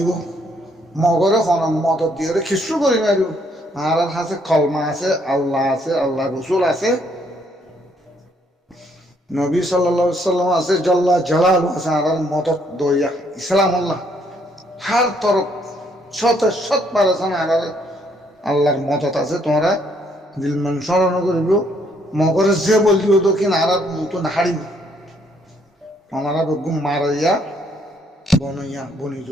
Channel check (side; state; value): both; normal; correlation 0.69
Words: মগরে মদত দিয়ে খিস্রু করি মারিব আর আছে কলমা আছে আল্লাহ রসুল আছে নবী সাল্লাল্লাহু আলাইহি সাল্লাম আছে জল্লা জালাল আছে আর মদত দইয়া ইসলাম আল্লাহ হার তরফ শত পারেছেন আর আল্লাহর মদত আছে তোমরা দিলমান স্মরণ করিব মগরে যে বললিব তো কিনা আর মতো নাহারিব আমরা বেগুন মারাইয়া বনইয়া বনি